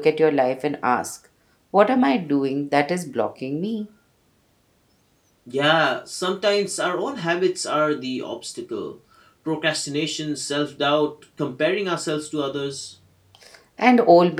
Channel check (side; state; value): both; identical; correlation 1.00